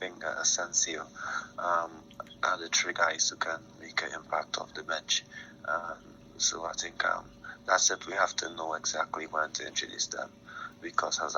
Asensio, are the three guys who can make an impact off the bench. So I think that's it. We have to know exactly when to introduce them, because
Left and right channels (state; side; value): identical; both; correlation 1.00